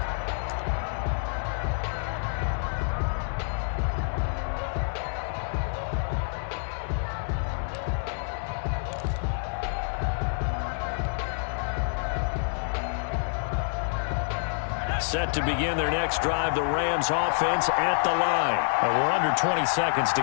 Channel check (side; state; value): right; silent; digital silence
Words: Set to begin their next drive, the Rams offense at the line. We're under 20 seconds to